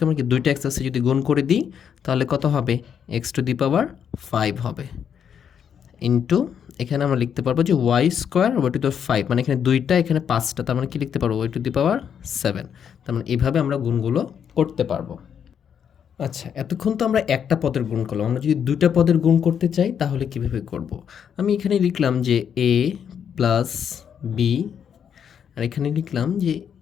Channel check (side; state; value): right; quieter; 8.0 dB